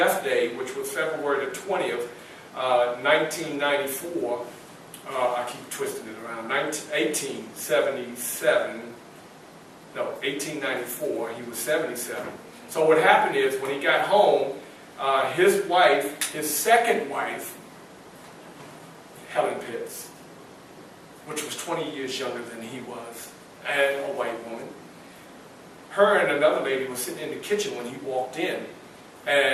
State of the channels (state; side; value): identical; both; correlation 1.00